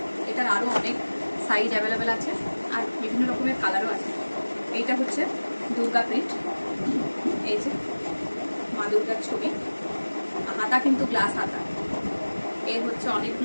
এটার আরও অনেক সাইজ অ্যাভেলেবেল আছে আর বিভিন্ন রকমের কালারও আছে। এইটা হচ্ছে দুর্গা প্রিন্ট, এই যে মা দুর্গার ছবি, হাতা কিন্তু গ্লাস হাতা। এর হচ্ছে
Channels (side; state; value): both; inverted; correlation -1.00